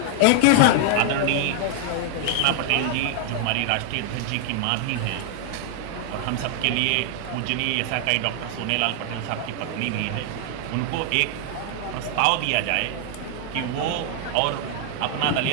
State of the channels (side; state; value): both; different; correlation 0.00